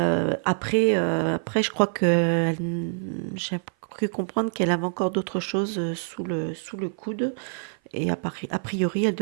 je crois que j'ai cru comprendre qu'elle avait encore d'autres choses sous le coude. Et a priori, elle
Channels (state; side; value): silent; left; 55 dB below the other